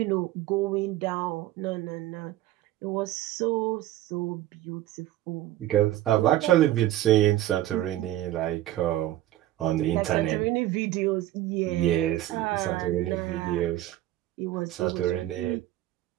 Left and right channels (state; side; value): quieter; left; 14.5 dB